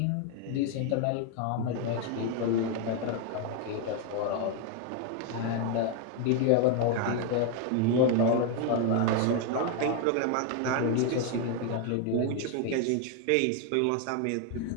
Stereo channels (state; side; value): different; both; correlation 0.01